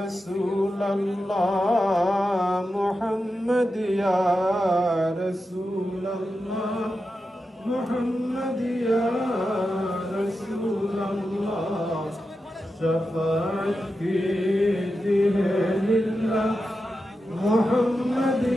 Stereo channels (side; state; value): both; normal; correlation 0.90